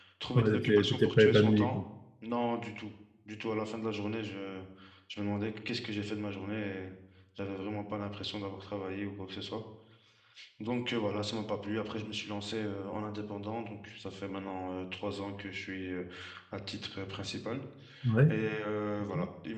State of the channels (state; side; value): identical; both; correlation 1.00